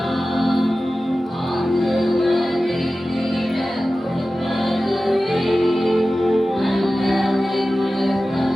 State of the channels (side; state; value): both; normal; correlation 0.95